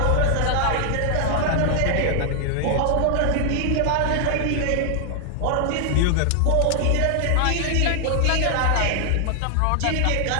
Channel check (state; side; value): different; both; correlation 0.00